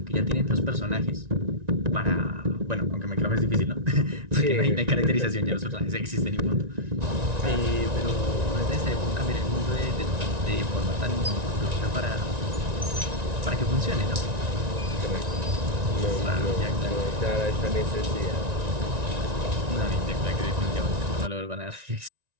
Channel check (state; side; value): late; left; 1.9 ms